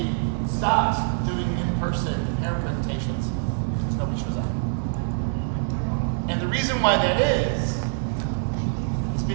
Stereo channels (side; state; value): left; silent; 61 dB below the other